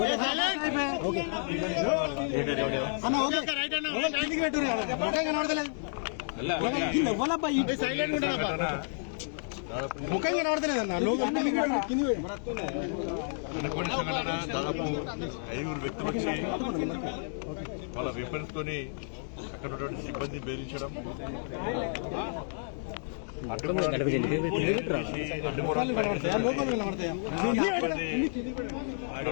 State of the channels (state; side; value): silent; right; digital silence